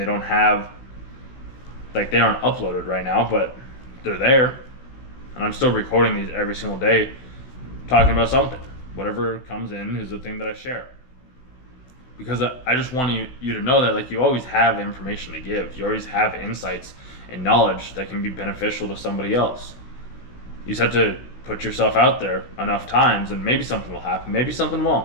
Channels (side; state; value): right; late; 16 ms